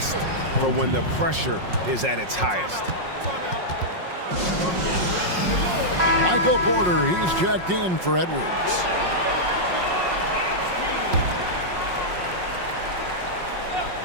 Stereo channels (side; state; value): left; late; 5.5 ms